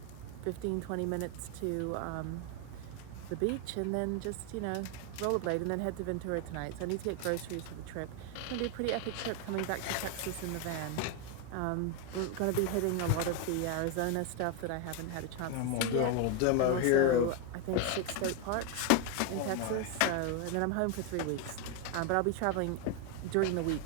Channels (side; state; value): both; different; correlation 0.01